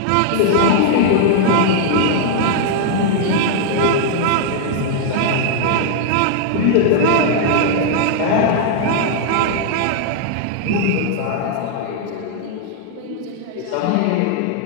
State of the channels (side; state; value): both; different; correlation -0.01